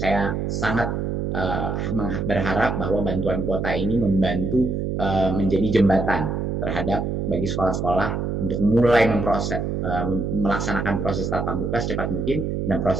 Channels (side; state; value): right; noise; hum, 1 dB below the sound